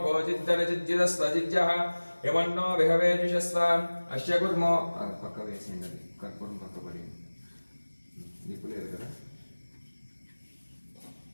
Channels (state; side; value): inverted; both; correlation -1.00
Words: जिद्दनजिद्जिदस्वजिद्यः यमन्नो विहवेजुषस्व अस्य कुर्मो पक्क वेसिंडది कर्पूरं पक्क पడి దీపులేదు కదా